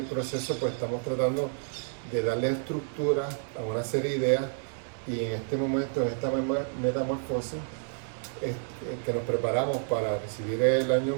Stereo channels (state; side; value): silent; left; digital silence